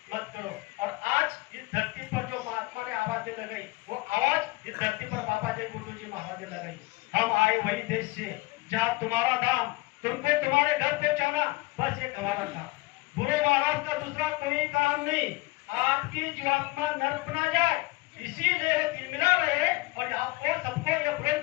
मत करो। और आज इस धरती पर जो महात्मा ने आवाज लगाई, वो आवाज इस धरती पर बाबा जय गुरुदेव जी महाराज ने लगाई। हम आए वही देश से जहाँ तुम्हारा धाम, तुमको तुम्हारे घर पहुंचाना, बस एक हमारा था। गुरु महाराज का दूसरा कोई काम नहीं, आपकी जीवात्मा नर्क बना जाए, इसीलिए तिलमिला रहे। और आपको सबको ये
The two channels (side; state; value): right; quieter; 22.3 dB